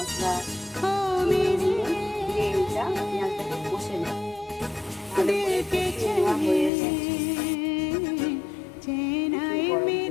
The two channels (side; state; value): right; drops out; at 6.7 s